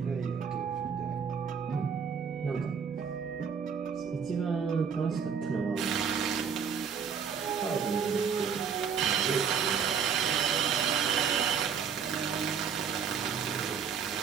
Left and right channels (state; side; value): quieter; left; 6.7 dB